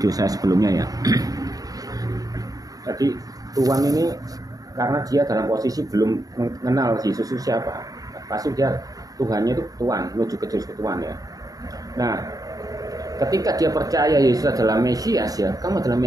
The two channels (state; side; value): late; left; 0.18 ms